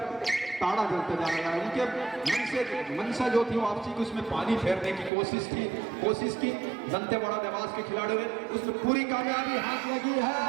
ताड़ा जलता जा रहा है। उनके मंशा जो थी वापसी की, उसमें पानी फेरने की कोशिश की दंतेवाड़ा देवास के खिलाड़ियों ने, उसमें पूरी कामयाबी हाथ लगी है।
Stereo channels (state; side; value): drops out; left; at 5.1 s